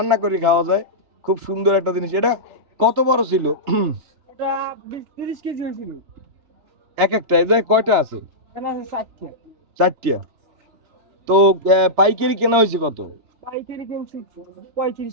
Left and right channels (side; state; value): left; late; 3.4 ms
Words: করে খাওয়া যায়। খুব সুন্দর একটা জিনিস। এটা কত বড় ছিল? এটা 30 কেজি হয়েছিল। এক একটা এটা কয়টা আছে? এটা আছে 4টা। 4টা। তো পাইকারি কেনা হয়েছে কত? পাইকারি কিনছি 35